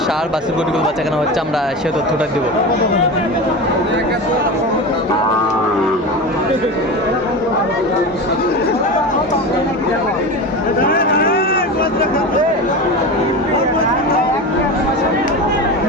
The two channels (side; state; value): both; normal; correlation 0.26